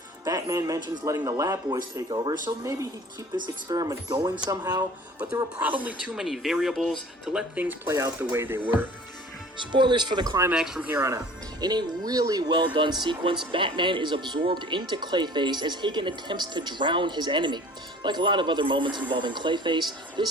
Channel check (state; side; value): normal; both; correlation 0.47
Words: Batman mentions letting the lab boys take over, so maybe he'd keep this experiment going somehow, but there were probably too many variables to let things play out the way they were. Spoilers for the climax from here on out. In a really well done sequence, Batman is absorbed into Clayface as Hagen attempts to drown his enemy. Like a lot of other moments involving Clayface,